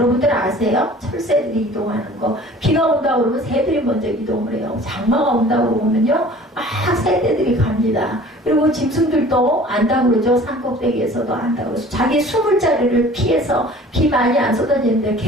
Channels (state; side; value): normal; both; correlation 0.47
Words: 아세요? 철새들이 이동하는 거. 비가 온다고 그러면 새들이 먼저 이동을 해요. 장마가 온다고 그러면요 막 새들이 갑니다. 그리고 짐승들도 안다고 그러죠. 산꼭대기에서도 안다고 그러죠. 자기 숨을 자리를 피해서 비 많이 안 쏟아지는데